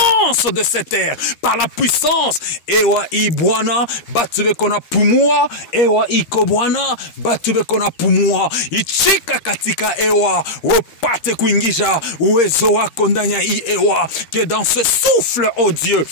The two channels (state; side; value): late; right; 13 ms